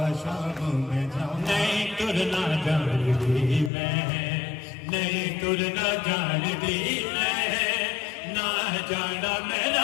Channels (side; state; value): right; drops out; at 3.7 s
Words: शाम में जावा नहीं तुरना जानती मैं नहीं तुरना जानती मैं ना जाना